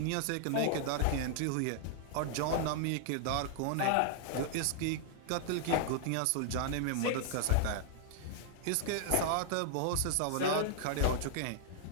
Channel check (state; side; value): different; both; correlation -0.01